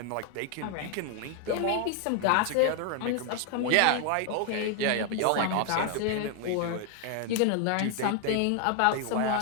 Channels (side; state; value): both; different; correlation 0.00